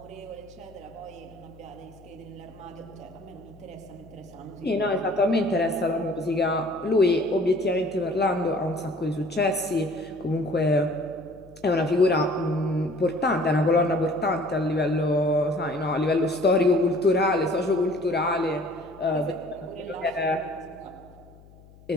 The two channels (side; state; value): left; noise; hum, 24 dB below the sound